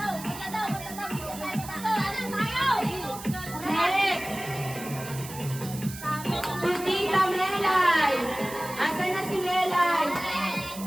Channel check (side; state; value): right; noise; hiss, 13 dB below the sound